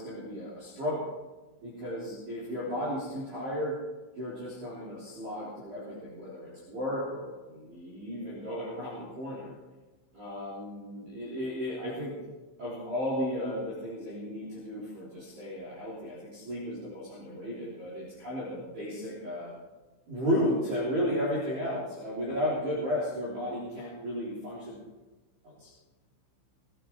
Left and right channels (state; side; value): late; left; 15 ms